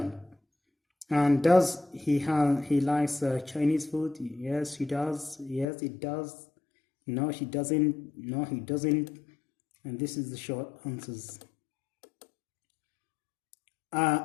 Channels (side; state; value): right; drops out; at 5.7 s